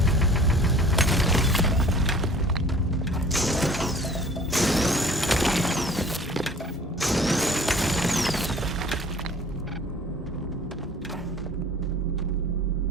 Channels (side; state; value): both; normal; correlation 0.49